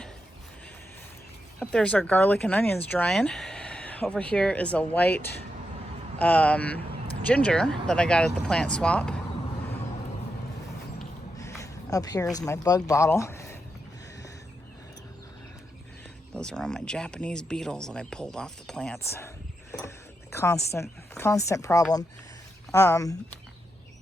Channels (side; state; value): both; normal; correlation 0.85